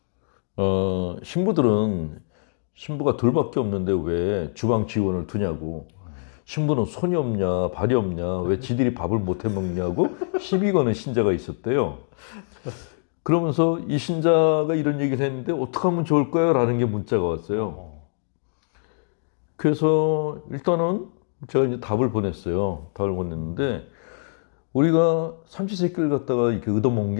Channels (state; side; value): silent; right; digital silence